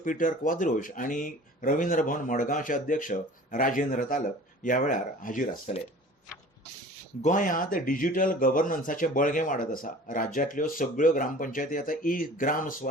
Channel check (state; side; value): normal; both; correlation 0.44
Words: क्वाद्रोश आनी रवींद्र भवन मडगांवचे अध्यक्ष राजेंद्र तालक ह्या वेळार हाजीर आसतले. गोंयांत डिजिटल गव्हर्नन्साचें बळगें वाडत आसा. राज्यांतल्यो सगळ्यो ग्रामपंचायती आतां ग्राम